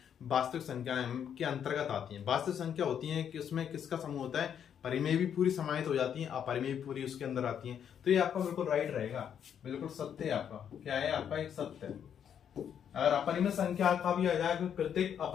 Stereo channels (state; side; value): quieter; right; 8.6 dB